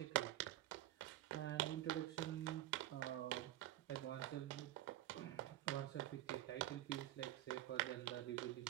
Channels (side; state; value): left; quieter; 14.3 dB